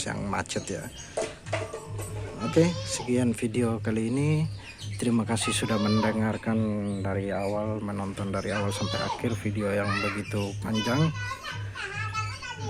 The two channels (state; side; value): identical; both; correlation 1.00